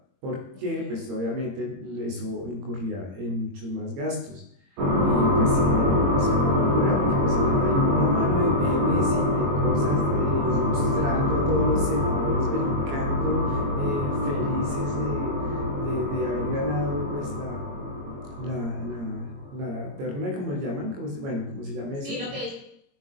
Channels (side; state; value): left; late; 22 ms